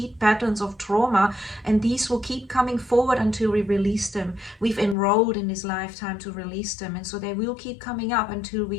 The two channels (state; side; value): drops out; right; at 5.0 s